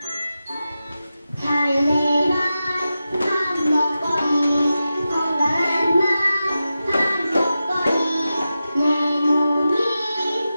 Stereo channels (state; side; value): inverted; both; correlation -0.92